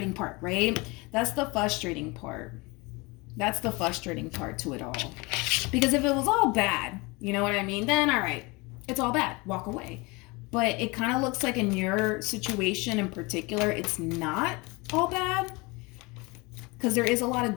part, right? That's the frustrating part. That's the frustrating part to it all. Because if it was all bad, you know what I mean? Then, all right, it's all bad. Walk away. But it kind of looks like in your situation in particular, it's not all bad, because there is a lot of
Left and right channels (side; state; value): right; quieter; 25.9 dB